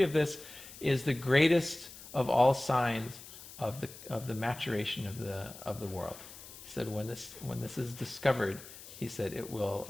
of this is the greatest of all signs of the maturation of the world. He said when this is discovered, he said it will.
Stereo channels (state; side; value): noise; left; hiss, 16 dB below the sound